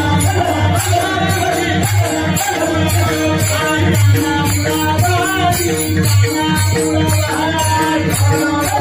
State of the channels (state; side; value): identical; both; correlation 1.00